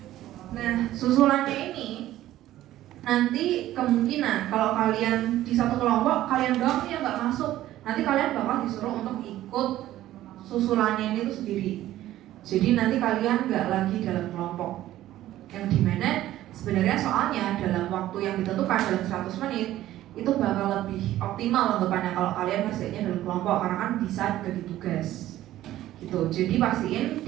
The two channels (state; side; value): quieter; left; 14.1 dB